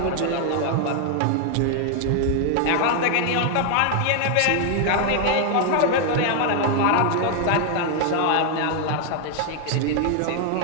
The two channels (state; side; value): different; both; correlation 0.00